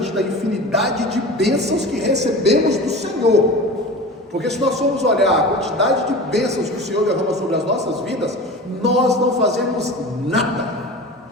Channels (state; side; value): normal; both; correlation 0.34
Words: da infinidade de bênçãos que recebemos do Senhor. Porque se nós formos olhar a quantidade de bênçãos que o Senhor derrama sobre as nossas vidas, nós não fazemos nada